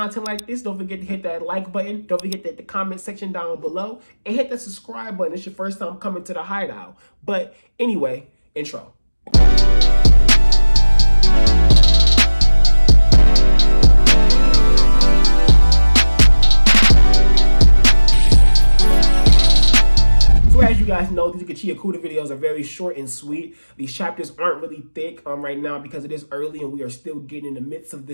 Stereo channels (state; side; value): inverted; both; correlation -1.00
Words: like this, don't forget to hit that like button. Don't forget to hit the comment section down below and hit the subscribe button. It's your first time coming to the Hideout. But anyway, intro. So as you guys know, these Gachiakuta videos are very short and sweet. These chapters aren't really thick right now because it is early and we are still getting in the midst of